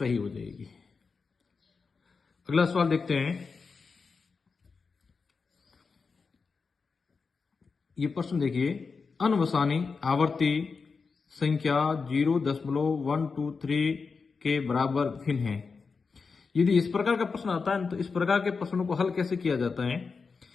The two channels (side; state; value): right; quieter; 4.9 dB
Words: हो जाएगी। अगला सवाल देखते हैं। ये प्रश्न देखिए, अनवसानी आवर्ती संख्या 0.123 के बराबर भिन्न है। यदि इस प्रकार का प्रश्न आता है तो इस प्रकार के प्रश्नों को हल कैसे किया जाता है,